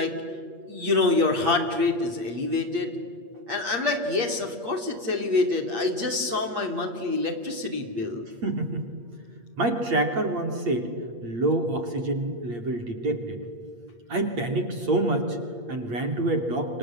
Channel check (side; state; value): left; late; 8.5 ms